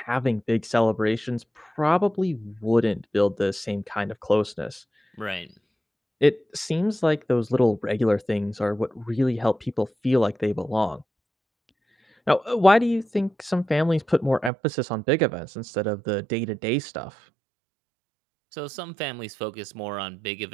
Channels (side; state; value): left; drops out; at 14.5 s